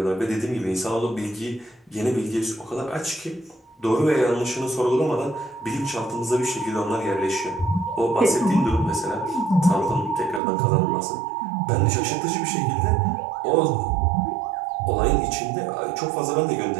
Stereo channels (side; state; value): left; drops out; at 10.4 s